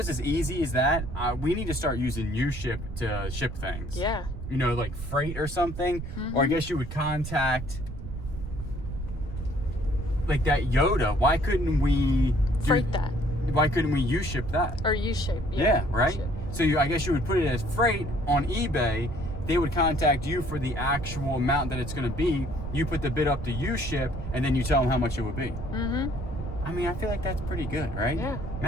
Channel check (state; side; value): noise; right; rumble, 8 dB below the sound